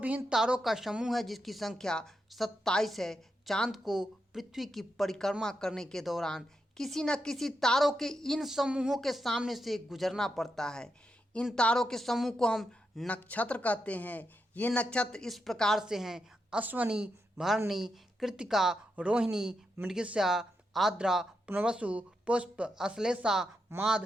तारों का समूह है, जिसकी संख्या 27 है। चांद को पृथ्वी की परिक्रमा करने के दौरान किसी न किसी तारों के इन समूहों के सामने से गुजरना पड़ता है। इन तारों के समूह को हम नक्षत्र कहते हैं। ये नक्षत्र इस प्रकार से हैं: अश्वनी, भरणी, कृत्तिका, रोहिणी, मृगशिरा, आद्रा, पुनर्वसु, पुष्प, अश्लेषा, माघ,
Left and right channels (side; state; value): both; normal; correlation 0.85